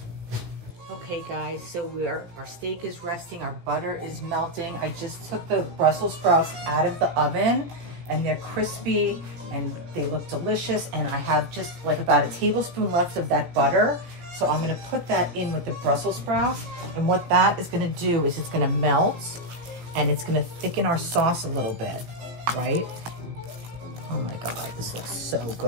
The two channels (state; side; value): late; left; 17 ms